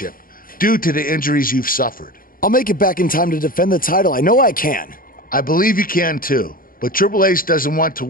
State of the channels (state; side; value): late; right; 0.41 ms